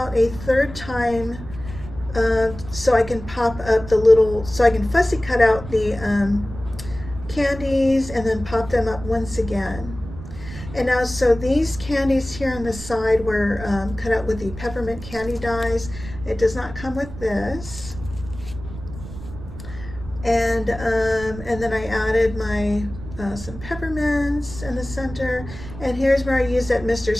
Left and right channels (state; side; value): noise; right; rumble, 13 dB below the sound